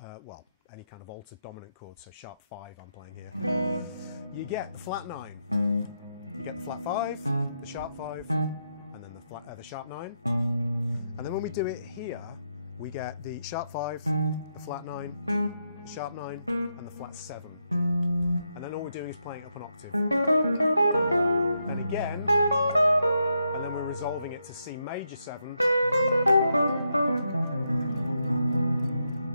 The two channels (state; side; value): inverted; both; correlation -0.81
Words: well, any kind of altered dominant chord, so sharp 5 I'm playing here, you get the flat 9. You get the flat 5, the sharp 5, and then the sharp 9. And then when we do it here, we get the sharp 5, the flat 9, the sharp 9, and the flat 7. And then all we're doing is playing up an octave. Then again, and then we're resolving it to C major 7.